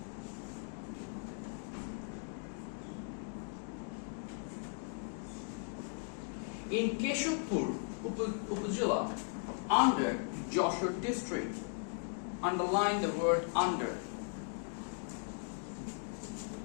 In Keshupur Upazila, under Joshua district, underline the word under.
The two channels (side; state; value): right; silent; 53 dB below the other